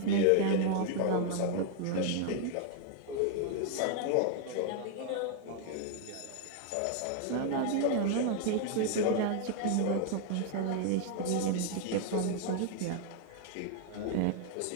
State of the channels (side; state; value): both; different; correlation 0.00